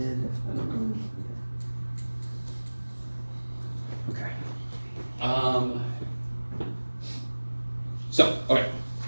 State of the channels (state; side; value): inverted; both; correlation -1.00